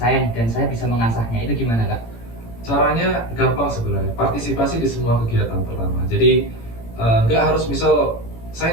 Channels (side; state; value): right; late; 18 ms